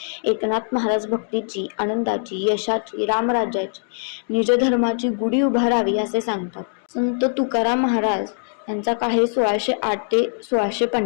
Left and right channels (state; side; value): silent; right; digital silence